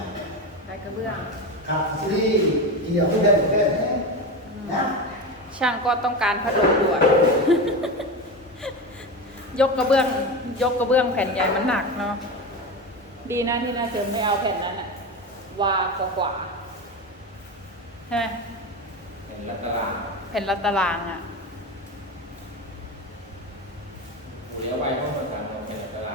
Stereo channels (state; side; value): normal; both; correlation 0.21